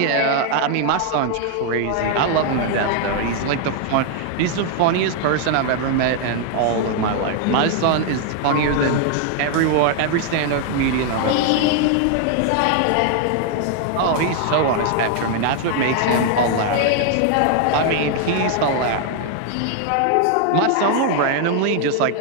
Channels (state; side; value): different; both; correlation 0.00